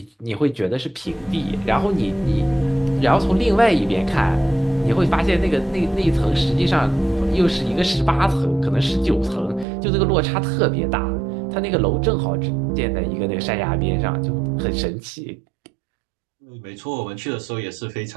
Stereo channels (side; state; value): left; drops out; at 9.7 s